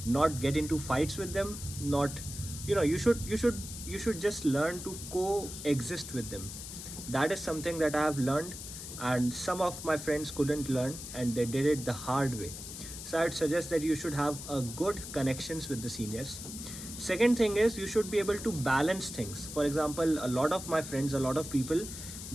not get into fights with them. Not, you should just learn to coexist with them. That is something that I have learned, and some of my friends couldn't learn and they did it the hard way. So I'd suggest that you should have a good connections with the seniors. Second thing is, you should be able to balance things. For example, a lot of my friends, a lot of people,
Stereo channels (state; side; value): noise; left; hiss, 10 dB below the sound